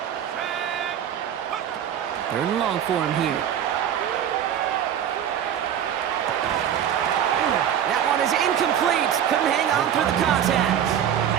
3rd and long for him here. That one is incomplete. Couldn't hang on through the contact.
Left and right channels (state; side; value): quieter; left; 9.6 dB